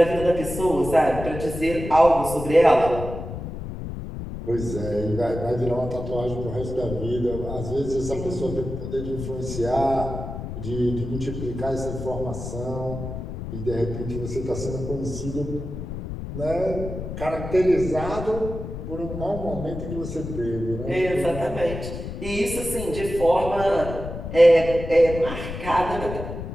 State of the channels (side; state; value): left; noise; rumble, 8 dB below the sound